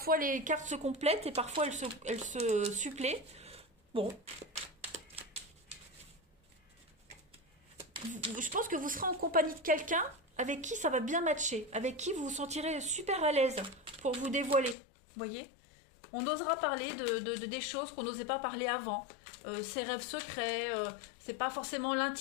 les cartes se complètent et parfois elles se suppléent. Bon. Je pense que vous serez en compagnie de quelqu'un avec qui ça va bien matcher, avec qui vous vous sentirez super à l'aise pour vous dévoiler. Vous voyez? On osera parler des choses qu'on n'osait pas parler avant. Ses rêves secrets, c'est pas forcément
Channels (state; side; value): drops out; right; at 14.8 s